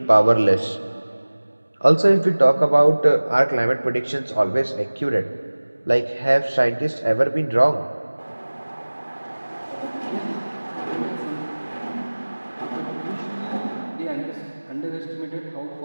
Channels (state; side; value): inverted; both; correlation -1.00